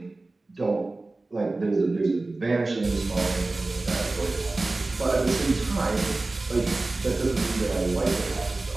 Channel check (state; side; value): quieter; left; 3.2 dB